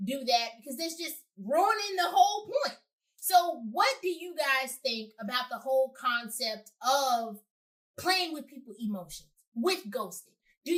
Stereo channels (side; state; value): both; identical; correlation 1.00